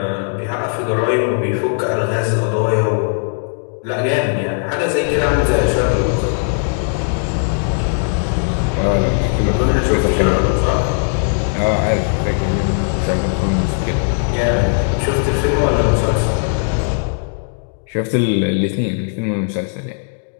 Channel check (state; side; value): silent; right; digital silence